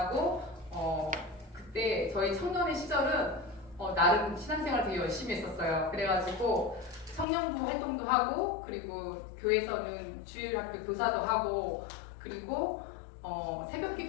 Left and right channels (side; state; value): right; drops out; at 7.2 s